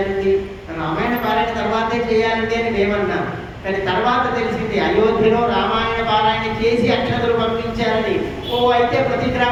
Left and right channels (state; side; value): identical; both; correlation 1.00